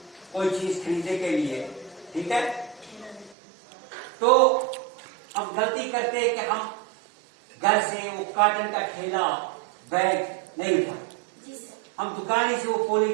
कोई चीज खरीदने के लिए, ठीक है, तो हम गलती करते हैं कि हम घर से वो कॉटन का थैला बैग नहीं उठाते, हम दुकान से वो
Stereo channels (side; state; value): left; drops out; at 3.4 s